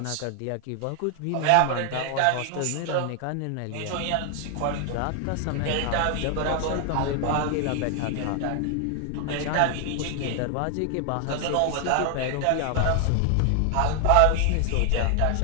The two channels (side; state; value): both; different; correlation 0.00